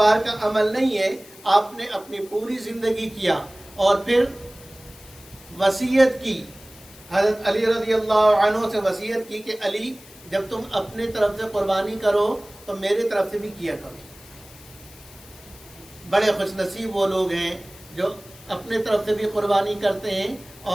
کا عمل نہیں ہے، آپ نے اپنی پوری زندگی کیا، اور پھر وصیت کی، حضرت علی رضی اللہ عنہ سے وصیت کی کہ علی جب تم اپنے طرف سے قربانی کرو تو میرے طرف سے بھی کیا کرو۔ بڑے خوش نصیب وہ لوگ ہیں جو اپنے طرف سے بھی قربانی کرتے ہیں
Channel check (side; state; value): left; noise; hiss, 21 dB below the sound